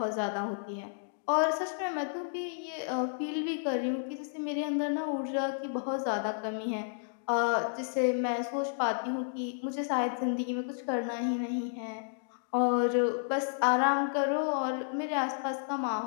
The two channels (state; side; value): silent; right; digital silence